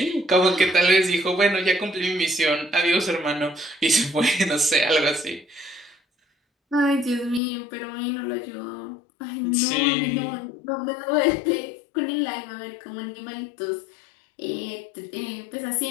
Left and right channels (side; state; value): right; drops out; at 7.4 s